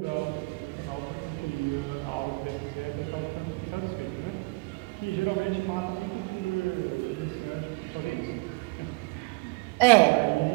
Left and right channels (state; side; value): quieter; left; 27.7 dB